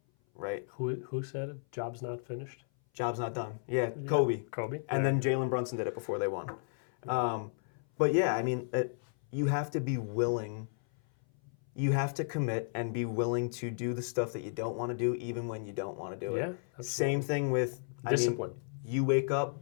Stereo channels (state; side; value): silent; right; 55 dB below the other